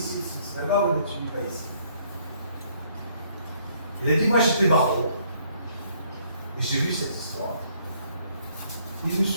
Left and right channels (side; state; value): both; inverted; correlation -0.65